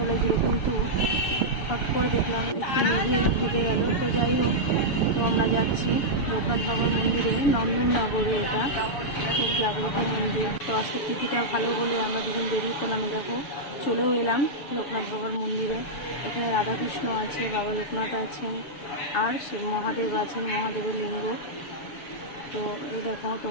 লাগছিল, কিন্তু হট করে দেখলাম একটু মেঘে ঢেকে গেল। তো যাই হোক, তো আমরা যাচ্ছি লোকনাথ বাবার মন্দিরে, নন্দননগরে। এটা খুব জাগ্রত মন্দির। তো আজকে তিথিটা ভালো বলে আমরা দুজন বেরিয়ে পড়লাম। দেখো চলেও এলাম লোকনাথ বাবার মন্দিরে। এখানে রাধাকৃষ্ণ আছে, বাবা লোকনাথ আছেন, আর শিব মহাদেব আছেন, মহাদেবের লিঙ্গ। তো এই দেখো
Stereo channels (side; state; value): right; late; 6.9 ms